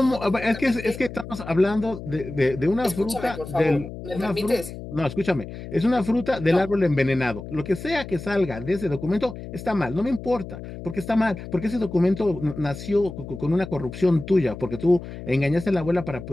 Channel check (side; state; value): left; noise; hum, 11 dB below the sound